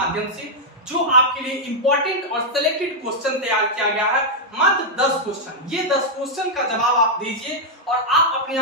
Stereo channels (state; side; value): normal; both; correlation -0.04